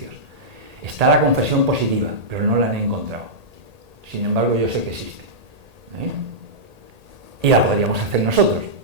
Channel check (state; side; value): late; left; 1.8 ms